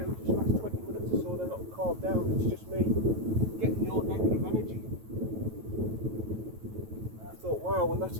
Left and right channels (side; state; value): left; late; 9.2 ms